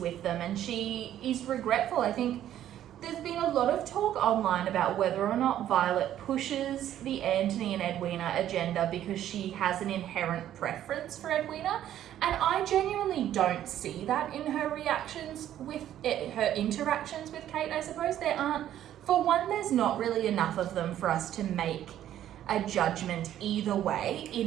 them, and she is regretful. I think there's been a lot of talk online about whether or not Violet pushes the Anthony and Edwina agenda because she has an inherent preference for Edwina. And I genuinely don't see that in her reactions with it, her interactions with Kate, I suppose. There aren't, for one, there's not really enough of them for us to make a judgment either way,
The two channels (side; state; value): left; quieter; 11.6 dB